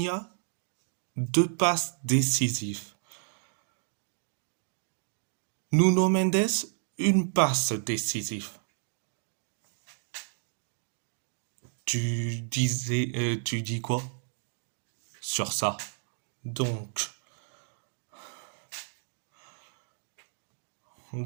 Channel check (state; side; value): silent; left; digital silence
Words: 2 passes décisives. Nuno Mendes, une passe décisive. Tu dis quoi sur ça? Donc,